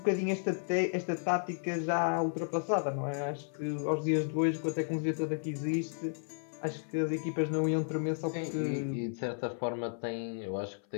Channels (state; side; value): silent; right; 56 dB below the other